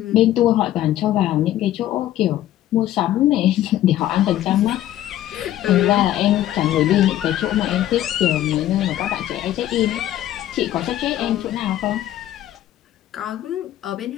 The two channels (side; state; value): right; quieter; 13.1 dB